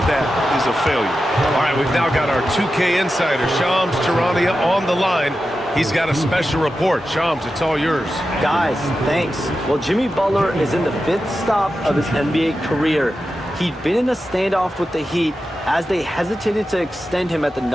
that is a failure. All right, we've now got our 2K insider, Shams Charania, on the line. He's got a special report. Shams, it's all yours. Guys, thanks. Well, Jimmy Butler is in the 5th stop of his NBA career. He'd been in a standoff with the Heat. As they hesitated to extend him at the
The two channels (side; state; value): both; normal; correlation 0.91